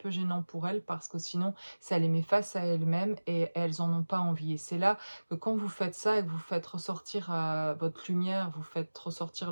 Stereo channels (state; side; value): inverted; both; correlation -1.00